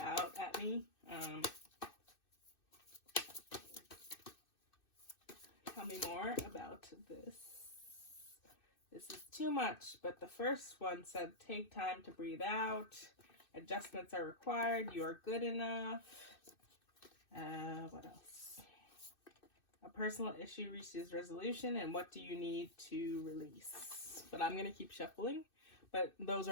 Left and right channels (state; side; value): late; right; 2.6 ms